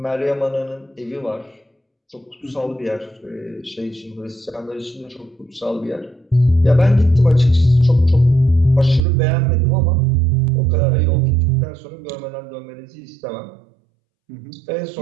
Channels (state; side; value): drops out; left; at 9.1 s